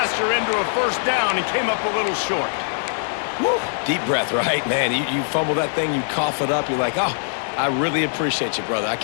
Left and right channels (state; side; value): silent; right; 63 dB below the other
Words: into a first down and came up a little short. Woo. Deep breath, right? Man, you fumble that thing, you cough it up, you're like, oh, I really appreciate you, brother. I